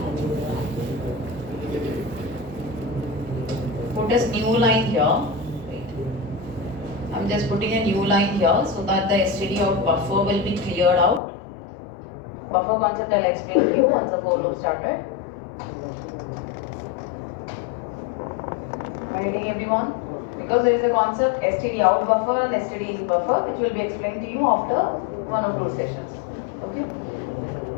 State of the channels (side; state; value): right; drops out; at 11.2 s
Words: Put a new line here. Wait. I'm just putting a new line here so that the std out buffer will be cleared out. Buffer concept I'll explain to you once the for loop started. Am I getting everyone? Because there is a concept std out buffer and std in buffer which will be explained to you after 1 or 2 sessions. Okay.